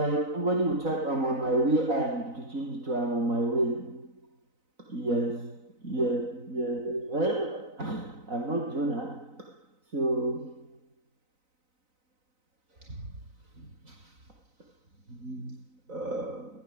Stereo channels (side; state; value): left; late; 4.0 ms